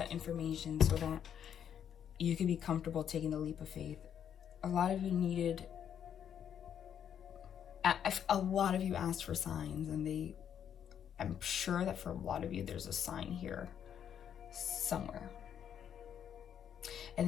information so that you could be comfortable taking the leap of faith. A lot of you needed, a lot of you asked for signs, and I'm sure that for a lot of you there's a sign here somewhere.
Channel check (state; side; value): quieter; right; 8.9 dB